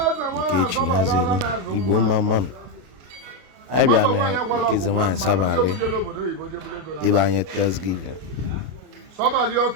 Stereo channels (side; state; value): left; late; 32 ms